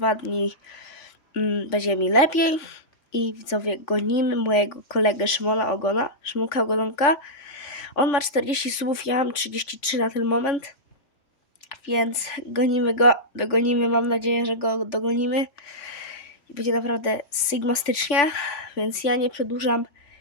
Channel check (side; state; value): right; late; 3.5 ms